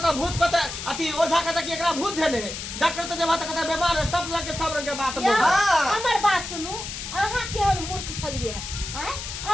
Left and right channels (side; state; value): left; noise; hiss, 8 dB below the sound